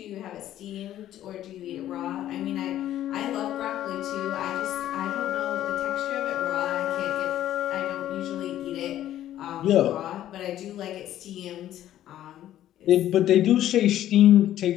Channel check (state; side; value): quieter; right; 12.5 dB